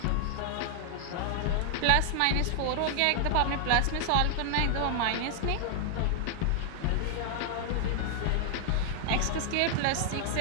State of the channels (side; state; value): both; different; correlation 0.00